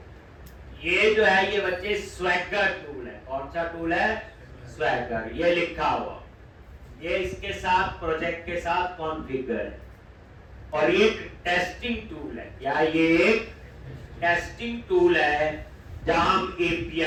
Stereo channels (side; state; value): both; identical; correlation 1.00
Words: ये जो है ये बच्चे स्वैगर टूल है, कौन सा टूल है, स्वैगर, ये लिखा हुआ, ये इसके साथ प्रोजेक्ट के साथ कॉन्फ़िगर है। और ये एक टेस्टिंग टूल है, क्या ये एक टेस्टिंग टूल है जहां हम